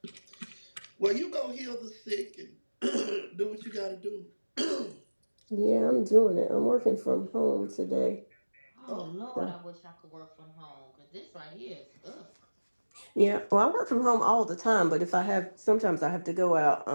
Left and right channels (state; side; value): inverted; both; correlation -1.00